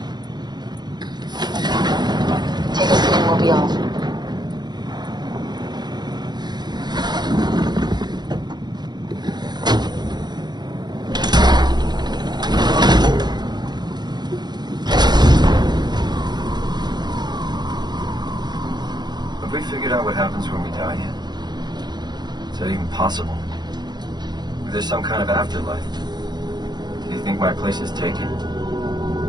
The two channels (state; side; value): late; left; 0.21 ms